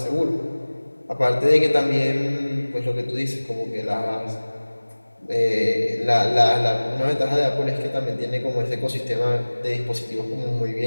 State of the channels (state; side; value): inverted; both; correlation -1.00